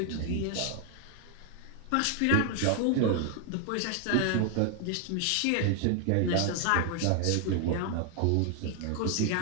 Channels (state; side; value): different; both; correlation 0.00